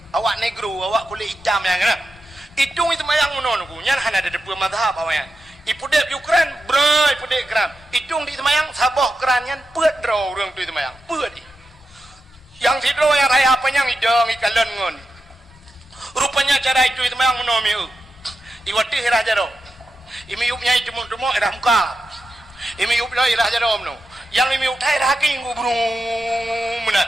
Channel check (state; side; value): normal; both; correlation 0.89